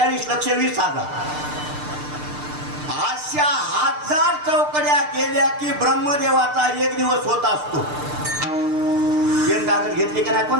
अशा 1000 चौकड्या गेल्या की ब्रह्मदेवाचा एक दिवस होत असतो. पेन कागद घेतली का नाही कोण?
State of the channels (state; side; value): late; left; 6.7 ms